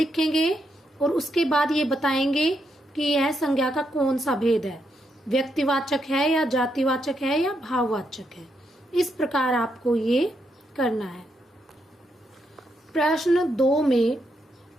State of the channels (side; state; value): both; normal; correlation 0.80